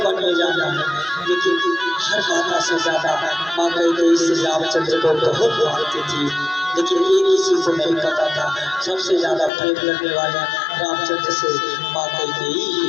में जाना है। लेकिन हर माता से ज्यादा माँ कैकेयी श्री रामचंद्र को बहुत मानती थी, लेकिन एक किसी को नहीं पता था सबसे ज्यादा प्रेम करने वाले रामचंद्र से माँ कैकेयी ही।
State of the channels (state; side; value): drops out; right; at 9.5 s